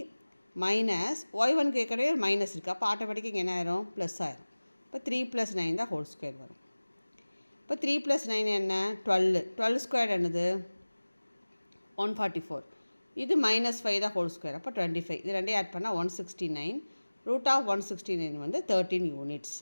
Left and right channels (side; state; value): both; inverted; correlation -1.00